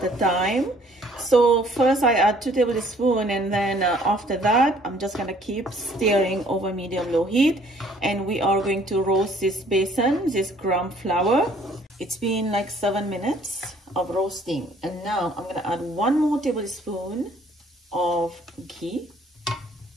a time. So first I add 2 tablespoons, and then after that I'm just gonna keep stirring over medium low heat, and we are going to roast this besan, this gram flour. It's been like 7 minutes of roasting, and now I'm gonna add 1 more tablespoon of ghee.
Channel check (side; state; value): both; normal; correlation 0.59